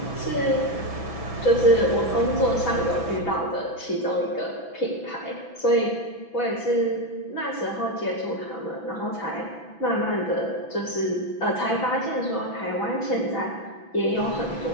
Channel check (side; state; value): right; late; 6.0 ms